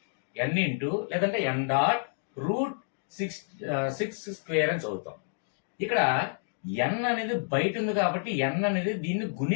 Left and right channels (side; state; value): right; silent; digital silence